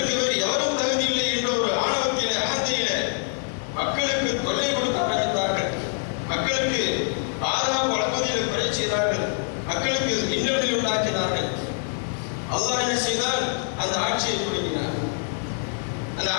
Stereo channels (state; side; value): silent; right; 62 dB below the other